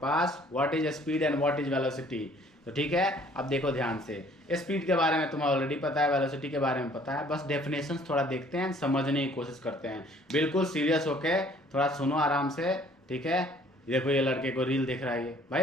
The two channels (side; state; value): both; normal; correlation 0.57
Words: what is speed and what is velocity. तो ठीक है, अब देखो ध्यान से, स्पीड के बारे में तुम्हें ऑलरेडी पता है, वेलोसिटी के बारे में पता है, बस डेफिनेशंस थोड़ा देखते हैं, समझने की कोशिश करते हैं। बिल्कुल सीरियस होके थोड़ा सुनो आराम से, ठीक है। देखो ये लड़के को रील देख रहा है, ये